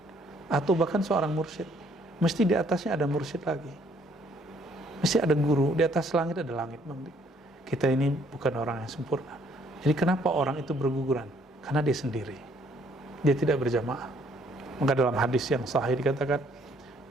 atau bahkan seorang mursyid, mesti di atasnya ada mursyid lagi. Mesti ada guru, di atas langit ada langit, Bang Dik. Kita ini bukan orang yang sempurna. Jadi kenapa orang itu berguguran? Karena dia sendiri. Dia tidak berjamaah. Maka dalam hadis yang sahih dikatakan,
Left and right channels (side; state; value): both; normal; correlation 0.65